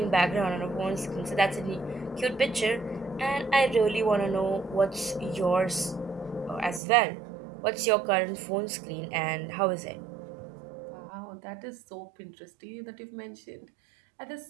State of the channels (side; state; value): left; drops out; at 6.8 s